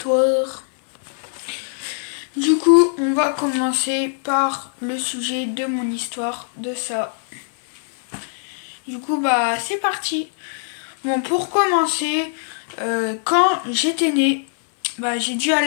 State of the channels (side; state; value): right; silent; digital silence